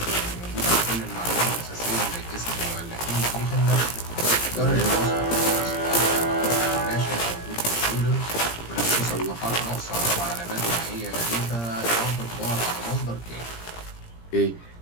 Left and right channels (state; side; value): late; right; 17 ms